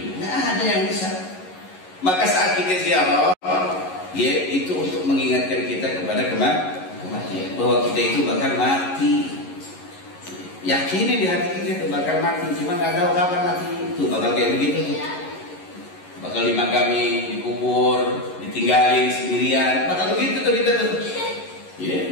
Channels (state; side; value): late; right; 11 ms